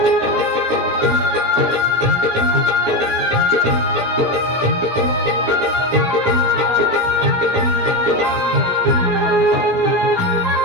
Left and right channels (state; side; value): late; left; 17 ms